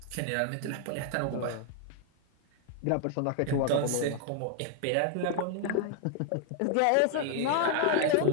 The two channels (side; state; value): both; different; correlation 0.00